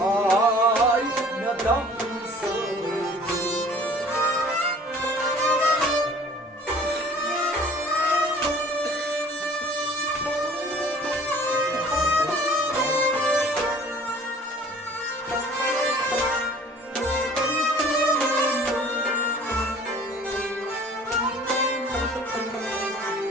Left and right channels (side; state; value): both; normal; correlation 0.50